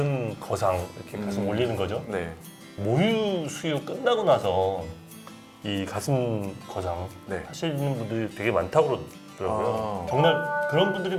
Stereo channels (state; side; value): identical; both; correlation 1.00